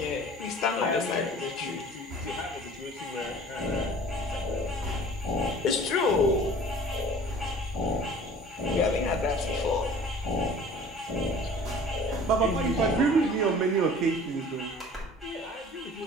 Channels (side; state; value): both; normal; correlation 0.46